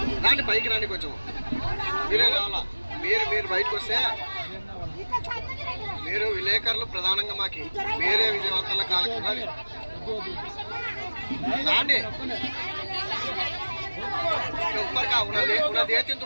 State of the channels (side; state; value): both; inverted; correlation -1.00